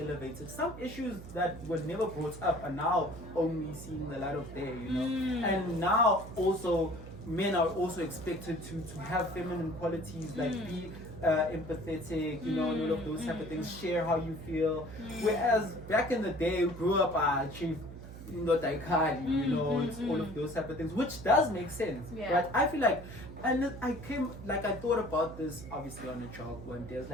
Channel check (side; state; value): right; noise; hum, 13 dB below the sound